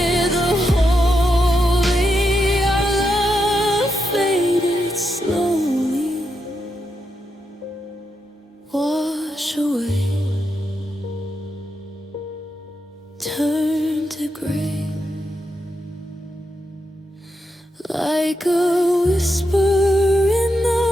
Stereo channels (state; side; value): normal; both; correlation 0.84